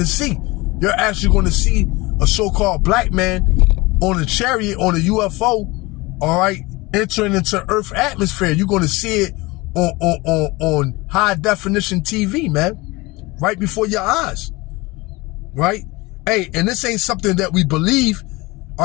see. You're actually going to see a so-called black man on a chariot, on a UFO, all right, entering into Earth atmosphere. You're going to see it on high definition TV, man, right before your eyes, right? Hey, and this ain't something that we believe,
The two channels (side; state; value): right; quieter; 22.8 dB